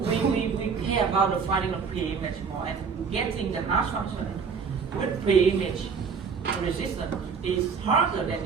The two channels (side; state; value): left; quieter; 5.8 dB